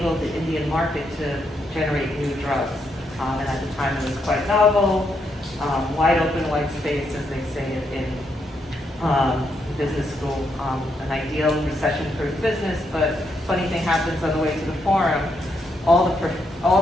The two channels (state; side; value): normal; both; correlation 0.78